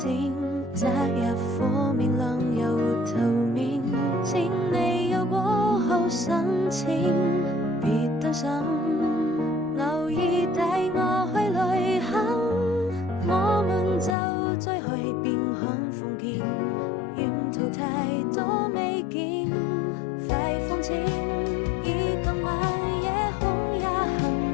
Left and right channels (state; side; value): drops out; right; at 14.2 s